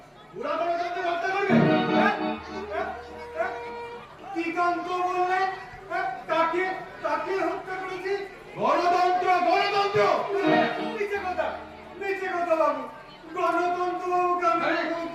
ওরা গণতন্ত্র হত্যা করবে। কি কান্ত বললেন? তাকে তাকে হত্যা করেছি? গণতন্ত্র গণতন্ত্র নিচে কথা বাবু। গণতন্ত্র বাবুকে আমি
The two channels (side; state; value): both; identical; correlation 1.00